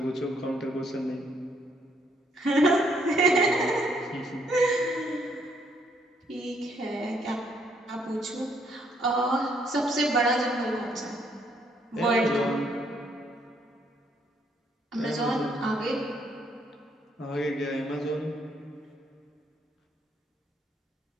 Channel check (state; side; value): normal; both; correlation 0.70